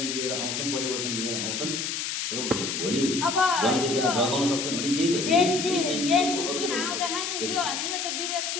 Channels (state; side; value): noise; left; hiss, 2 dB below the sound